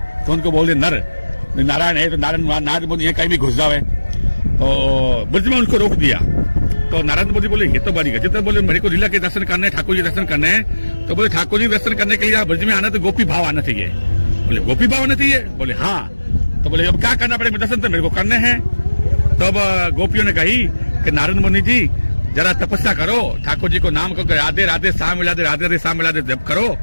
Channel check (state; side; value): inverted; both; correlation -1.00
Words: तो उनको बोलते नर नारायण है तो नारद मुनि कहीं भी घुस जाए। तो ब्रज में उनको रोक दिया। तो नारद मोदी बोले ये तो बड़ी गजब है, बोले मेरे को लीला के दर्शन करने, ठाकुर जी दर्शन करने हैं। तो बोले ठाकुर जी दर्शन करने के लिए ब्रज में आना तो गोपी भाव आना चाहिए। बोले गोपी भाव आना चाहिए? बोले हाँ। तो बोले अब क्या करना पड़ेगा? दर्शन तो मेरे को करने हैं। तो अब गोपियों ने कही कि नारद मुनि जी जरा तपस्या करो, ठाकुर जी को नाम को राधे राधे शाम मिला दे, राधे राधे शाम मिला दे जब करो,